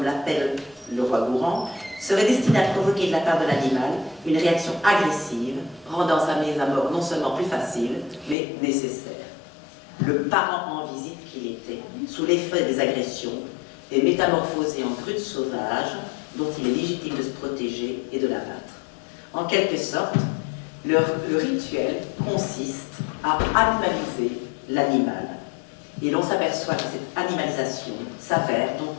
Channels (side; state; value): right; drops out; at 8.3 s